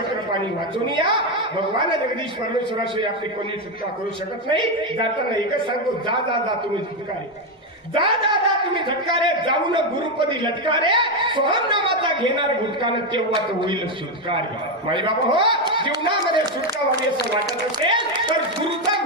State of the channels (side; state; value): both; normal; correlation 0.07